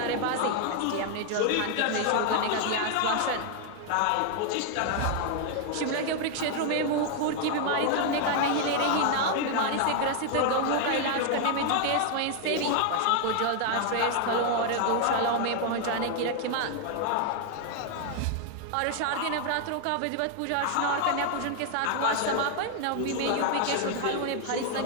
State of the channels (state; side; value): different; both; correlation 0.00